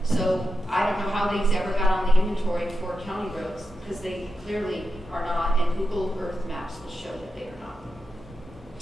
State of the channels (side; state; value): both; normal; correlation 0.89